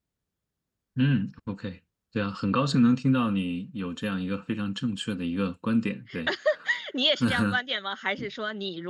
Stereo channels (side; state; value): both; identical; correlation 1.00